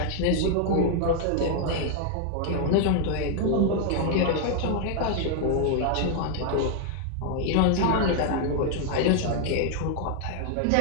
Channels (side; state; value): both; different; correlation 0.00